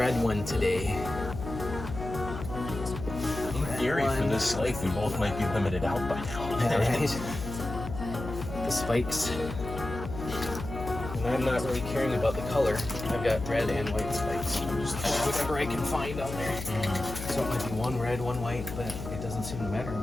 one today. In theory, for this lake, we both might be limited out by now. Right? The spikes. And I'm not really caring about the color. I've got red and white spikes. Just whatever I can find on there. So it might be one red, one white, but it doesn't seem to matter.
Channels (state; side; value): noise; left; hum, 8 dB below the sound